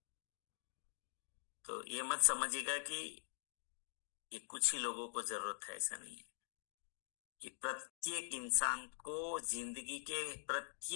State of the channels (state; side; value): silent; right; digital silence